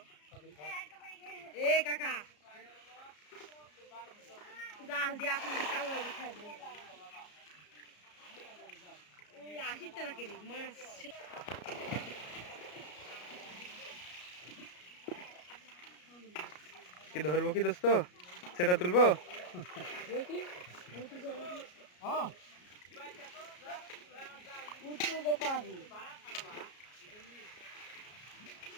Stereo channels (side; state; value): right; late; 33 ms